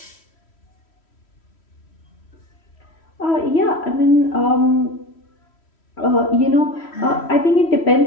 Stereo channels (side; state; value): right; late; 3.1 ms